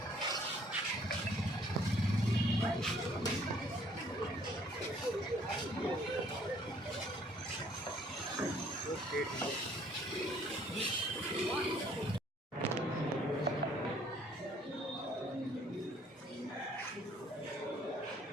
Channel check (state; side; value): normal; both; correlation 0.60